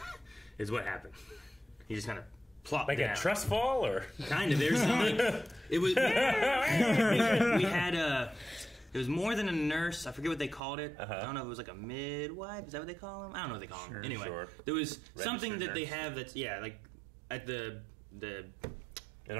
is what happened. He just kind of plopped like down. a trust fall, or kind of. There's some, like, it was. we had it was more than a nurse. I forget what they called it. I don't know if it was like a midwife. Is that what they call them? I don't know what they call them. Anyway, there was something that they have that's like at the in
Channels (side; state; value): left; drops out; at 10.6 s